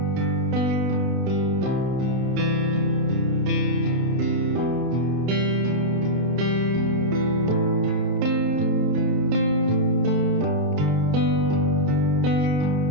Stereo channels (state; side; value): late; left; 31 ms